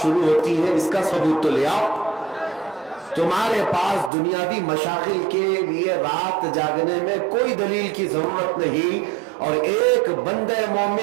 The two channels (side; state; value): left; drops out; at 4.1 s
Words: شروع ہوتی ہیں، اس کا ثبوت تو لے آؤ۔ تمہارے پاس دنیاوی مشاغل کے لیے رات جاگنے میں کوئی دلیل کی ضرورت نہیں، اور ایک بندہ